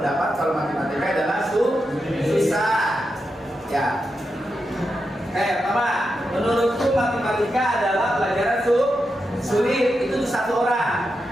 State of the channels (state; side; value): normal; both; correlation 0.87